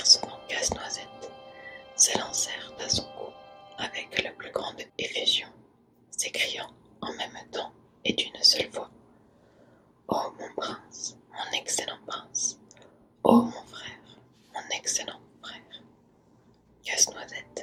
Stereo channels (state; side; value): identical; both; correlation 1.00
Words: Casse-Noisette, s'élancèrent à son cou avec la plus grande effusion, s'écriant en même temps et d'une seule voix: Oh mon prince, mon excellent prince! Oh mon frère, mon excellent frère!